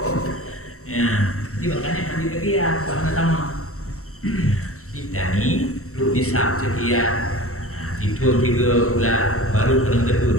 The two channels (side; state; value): right; late; 0.64 ms